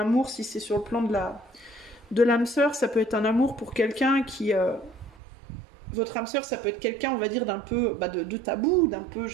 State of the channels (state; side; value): drops out; left; at 5.2 s